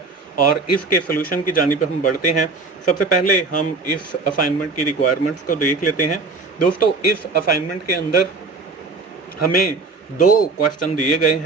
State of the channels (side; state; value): left; quieter; 3.9 dB